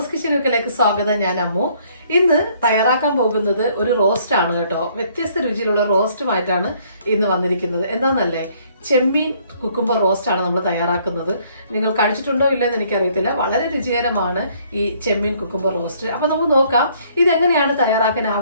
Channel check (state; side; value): inverted; both; correlation -0.63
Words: കിച്ചണിലേക്ക് സ്വാഗതം. ഞാൻ അമ്മു. ഇന്ന് തയ്യാറാക്കാൻ പോകുന്നത് ഒരു റോസ്റ്റ് ആണ് കേട്ടോ. വ്യത്യസ്ത രുചിയിലുള്ള റോസ്റ്റുമായിട്ടാണ് ഇന്ന് വന്നിരിക്കുന്നത്. എന്താണെന്നല്ലേ, ചെമ്മീൻ കുക്കുംബർ റോസ്റ്റ് ആണ് നമ്മൾ തയ്യാറാക്കുന്നത്. നിങ്ങൾ കഴിച്ചിട്ടുണ്ടോ ഇല്ലെന്ന് എനിക്കറിയത്തില്ല. വളരെ രുചികരമാണ് ഈ ചെമ്മീൻ കുക്കുംബർ റോസ്റ്റ്. അപ്പോൾ നമുക്ക് നോക്കാം ഇതെങ്ങനെയാണ് തയ്യാറാക്കാൻ